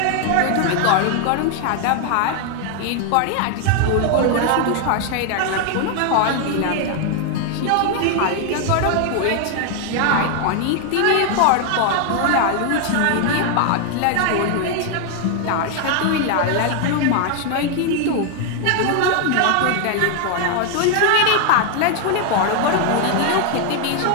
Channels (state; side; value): different; both; correlation 0.00